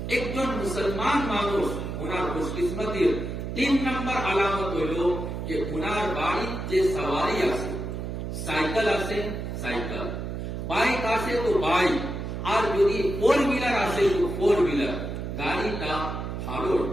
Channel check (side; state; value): right; noise; hum, 5 dB below the sound